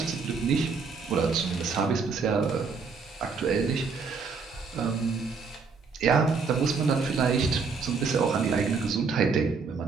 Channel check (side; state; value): left; quieter; 5.0 dB